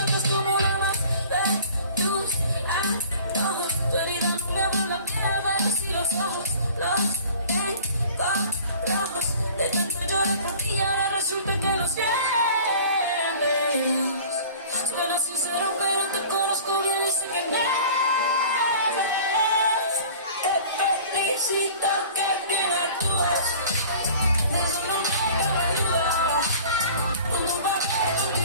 como uno más de tus antojos. Tu herida no me vuelve a piel, pero si los ojos los tengo rojos. De tanto llorar por ti y ahora resulta que los pierdes. Suena sincero pero te conozco bien y sé que mientes. Te felicito que bien actúas.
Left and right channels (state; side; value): inverted; both; correlation -0.45